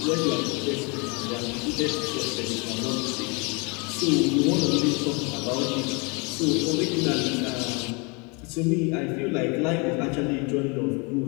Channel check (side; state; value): right; quieter; 30.7 dB